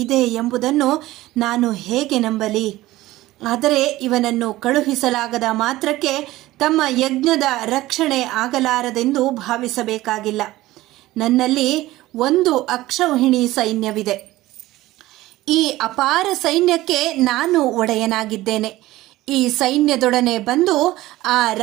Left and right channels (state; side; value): quieter; left; 17.1 dB